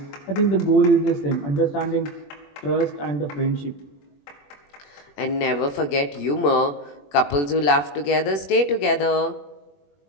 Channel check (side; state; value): right; late; 21 ms